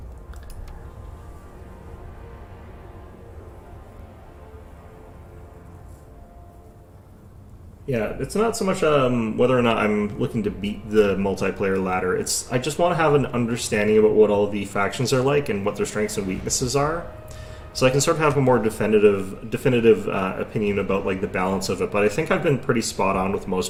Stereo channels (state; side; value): identical; both; correlation 1.00